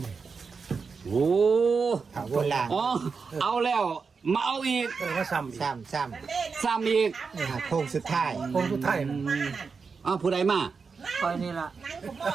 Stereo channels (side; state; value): left; quieter; 5.1 dB